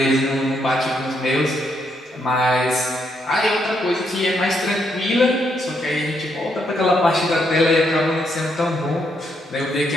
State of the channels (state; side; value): normal; both; correlation 0.76